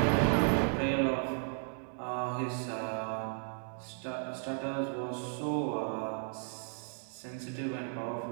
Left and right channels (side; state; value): left; silent; 55 dB below the other